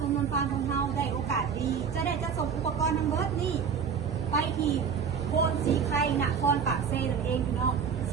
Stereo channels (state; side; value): quieter; left; 6.6 dB